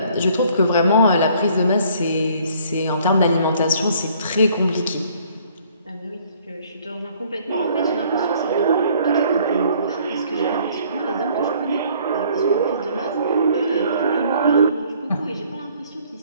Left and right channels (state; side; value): inverted; both; correlation -0.59